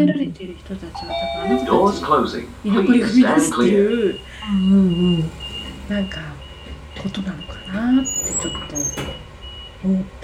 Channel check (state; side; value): identical; both; correlation 1.00